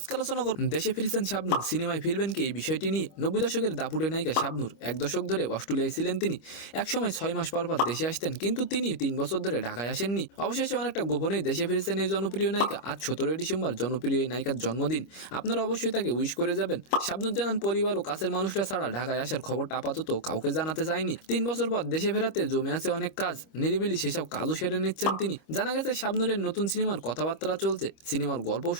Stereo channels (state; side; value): late; right; 26 ms